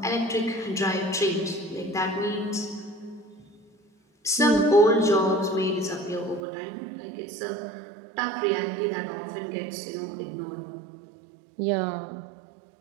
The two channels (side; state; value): left; drops out; at 6.4 s